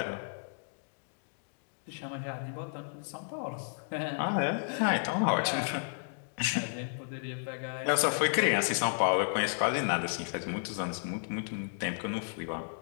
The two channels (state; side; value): silent; right; digital silence